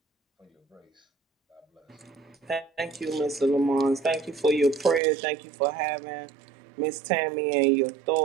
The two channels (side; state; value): left; drops out; at 5.0 s